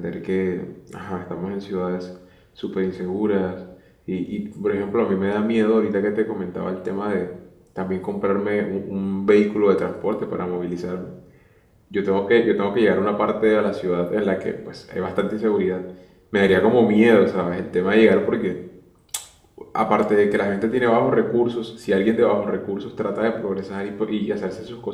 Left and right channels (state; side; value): identical; both; correlation 1.00